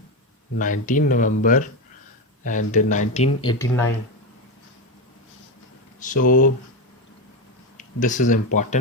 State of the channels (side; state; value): both; normal; correlation 0.13